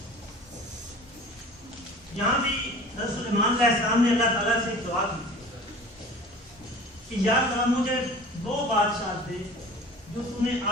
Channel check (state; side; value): normal; both; correlation 0.42